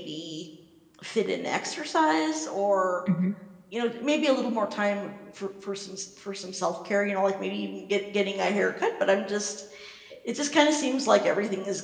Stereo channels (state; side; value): identical; both; correlation 1.00